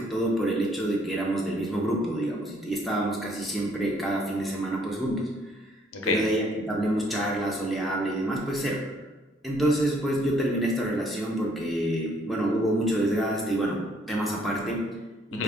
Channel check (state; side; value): normal; both; correlation 0.65